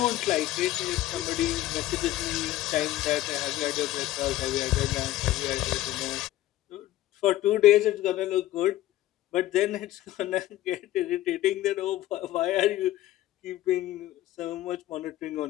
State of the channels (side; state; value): right; quieter; 14.9 dB